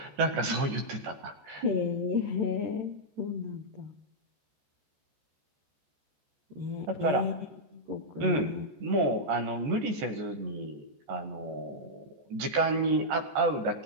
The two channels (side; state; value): left; late; 14 ms